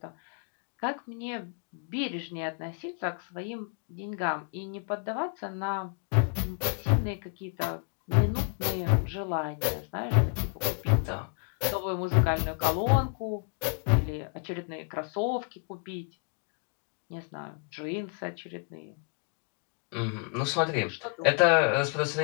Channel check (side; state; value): right; quieter; 38.0 dB